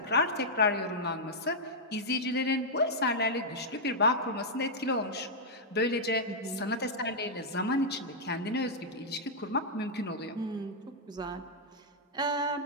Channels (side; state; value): both; normal; correlation -0.07